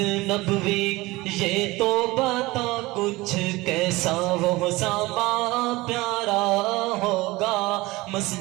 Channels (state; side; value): quieter; left; 20.8 dB